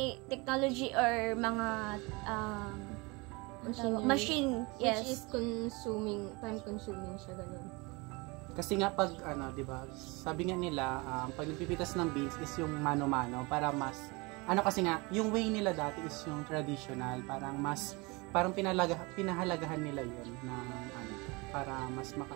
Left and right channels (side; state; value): left; quieter; 26.4 dB